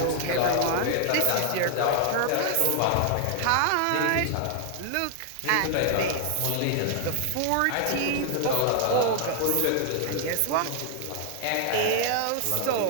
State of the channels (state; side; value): different; both; correlation 0.00